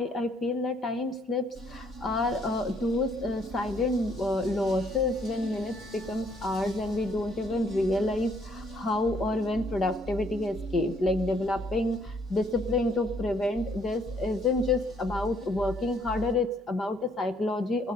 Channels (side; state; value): both; normal; correlation 0.67